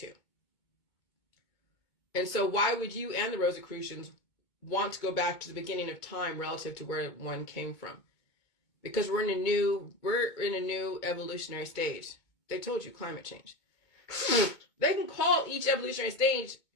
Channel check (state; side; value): late; right; 2.2 ms